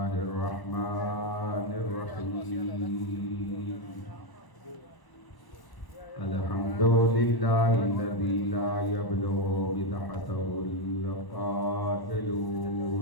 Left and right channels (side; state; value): right; late; 1.0 ms